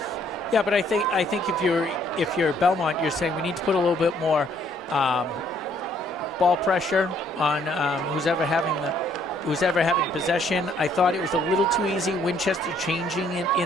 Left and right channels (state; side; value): normal; both; correlation 0.65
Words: Yeah, but I think if you're Belmont, you're saying we need to put a little bit more ball pressure on who's ever having possession. I thought it was a little too easy. Winchester changing it